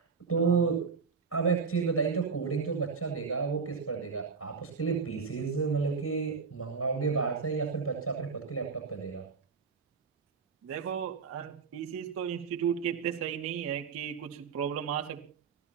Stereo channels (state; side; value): quieter; left; 5.4 dB